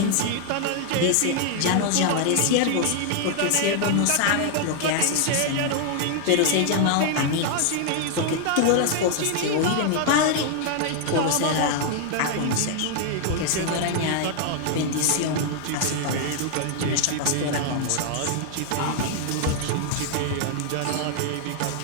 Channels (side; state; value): both; different; correlation 0.00